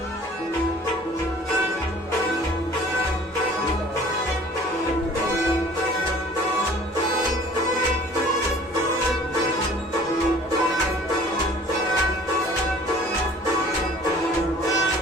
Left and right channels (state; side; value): normal; both; correlation 0.50